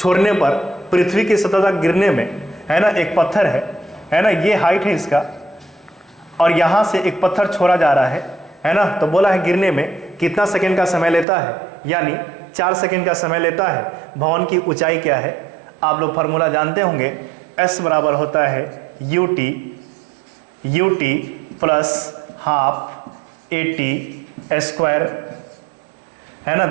पर पृथ्वी की सतह तक गिरने में, है ना, एक पत्थर है ना, ये हाइट है इसका, और यहां से एक पत्थर छोड़ा जा रहा है ना। तो बोला है गिरने में कितना सेकंड का समय लेता है, यानी 4 सेकंड का समय लेता है। भवन की ऊंचाई क्या है, आप लोग फार्मूला जानते होंगे, S बराबर होता है UT plus half AT square, है ना।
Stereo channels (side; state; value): left; drops out; at 11.2 s